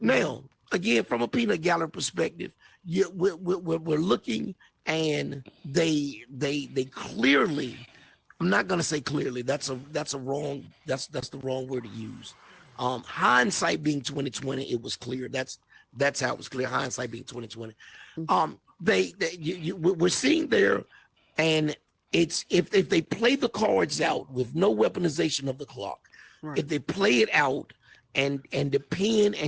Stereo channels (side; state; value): both; identical; correlation 1.00